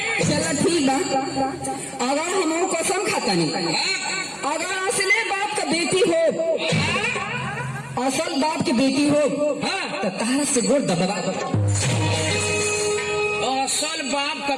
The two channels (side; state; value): both; identical; correlation 1.00